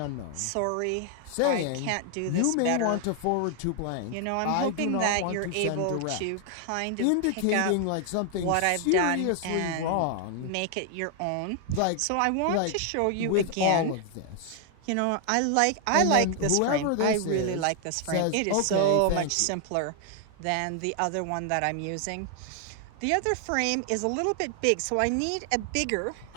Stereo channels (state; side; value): different; both; correlation 0.00